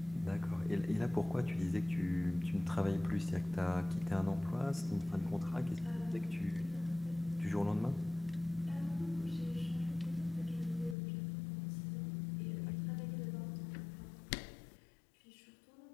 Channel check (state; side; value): drops out; right; at 11.0 s